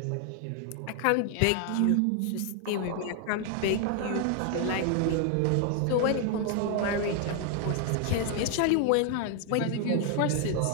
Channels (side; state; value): both; different; correlation 0.00